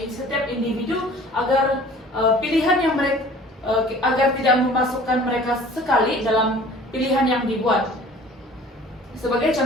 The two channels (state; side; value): normal; both; correlation 0.48